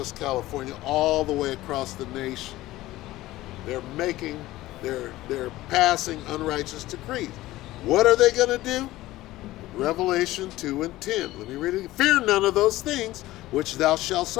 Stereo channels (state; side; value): quieter; right; 16.8 dB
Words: California, all the way across the nation. They're passing unrighteous decrees. What are they going to do? Revelation 2 and 10. Let me read it. Fear none of those things which thou shalt